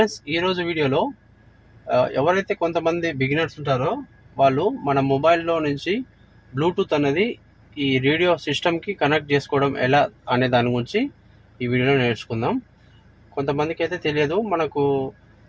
ఈరోజు వీడియోలో ఎవరైతే కొంతమంది బిగినర్స్ ఉంటారో వాళ్ళు మన మొబైల్లో నుంచి బ్లూటూత్ అనేది ఈ రేడియో సిస్టమ్కి కనెక్ట్ చేసుకోవడం ఎలా అనే దాని గురించి ఈ వీడియోలో నేర్చుకుందాం. కొంతమందికి అయితే తెలియదు. మనకు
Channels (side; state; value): both; identical; correlation 1.00